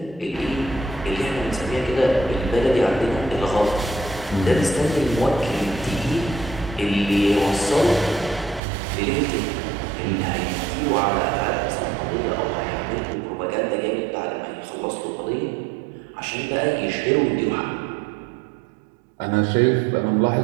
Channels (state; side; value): drops out; left; at 8.6 s